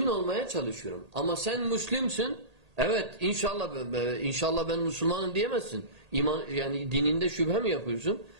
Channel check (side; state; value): left; late; 1.8 ms